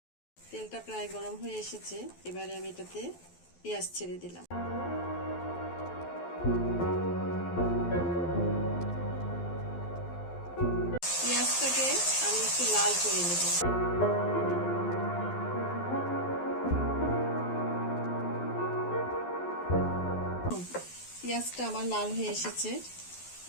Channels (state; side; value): late; right; 12 ms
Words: তেলটা প্রায় গরম হয়ে এসেছে, এবারে আমি এটাতে পেঁয়াজ ছেড়ে দিলাম। পেঁয়াজটাকে আমি একটু লাল করে নেব। পেঁয়াজটা আমার লাল হয়ে এসেছে,